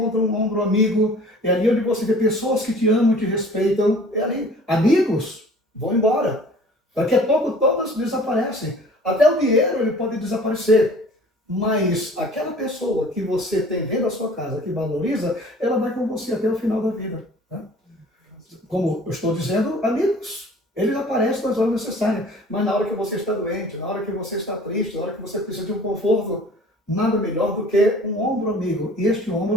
um ombro amigo, é ali onde você vê pessoas que te amam e te respeitam. É ali. Amigos vão embora. Daqui a pouco todas desaparecem. Até o dinheiro ele pode desaparecer. Mas aquela pessoa que você tem dentro da sua casa, que valoriza, ela vai com você até o final da vida. Tá? Como eu estou dizendo, amigos, eles aparecem nas horas necessárias. Mas na hora que você está doente, na hora que você está triste, na hora que você precisa de um conforto, nada melhor do que um ombro amigo. E este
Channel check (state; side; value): normal; both; correlation 0.48